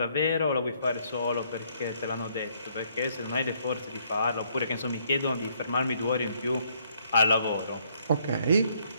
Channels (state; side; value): inverted; both; correlation -0.68